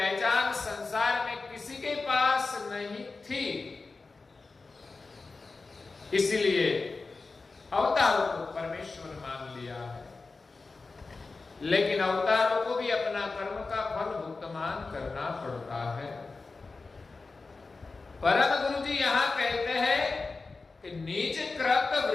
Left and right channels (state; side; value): quieter; right; 3.9 dB